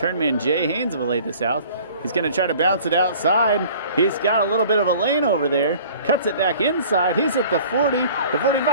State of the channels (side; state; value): both; inverted; correlation -0.49